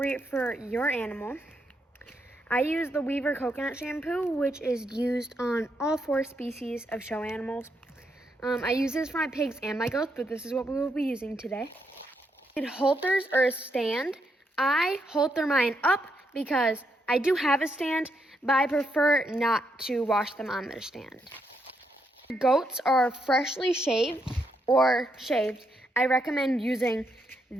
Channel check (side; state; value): both; normal; correlation 0.79